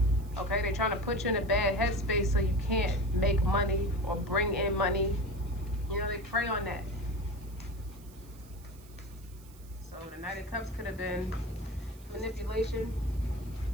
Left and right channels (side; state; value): right; noise; hiss, 24 dB below the sound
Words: Okay, they're trying to put you in a bad headspace so you can't make money or bring in money. You know, they prey on that. So the Knight of Cups could have been manipulation.